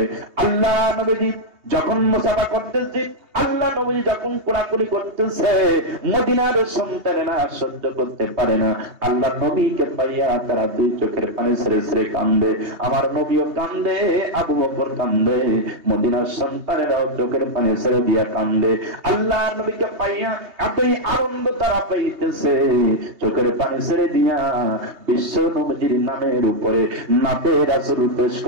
আল্লাহ নবীজি যখন মুসাফা করতেছে, আল্লাহ নবী যখন কোলাকুলি করতেছে, মদিনার সন্তানেরা সহ্য করতে পারে না। আল্লাহ নবীকে পাইয়া তারা 2 চোখের পানি ছেড়ে ছেড়ে কান্দে। আমার নবীও কান্দে, আবু বকর কান্দে, মদিনার সন্তানেরাও চোখের পানি ছেড়ে দিয়া কান্দে। আল্লাহ নবীকে পাইয়া এতই আনন্দ তারা পাইতেছে, চোখের পানি ছেড়ে দিয়া বিশ্ব নবীর নামের উপরে নাতে রাসূল পেশ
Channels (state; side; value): late; left; 2.8 ms